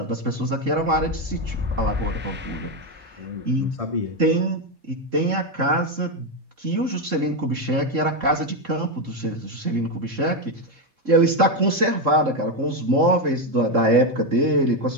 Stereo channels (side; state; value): left; late; 3.7 ms